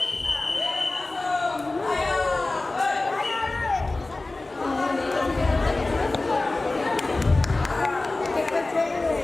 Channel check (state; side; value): quieter; right; 3.1 dB